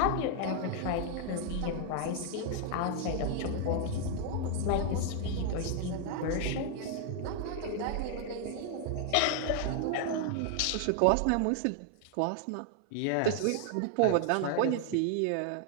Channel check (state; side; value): different; both; correlation 0.00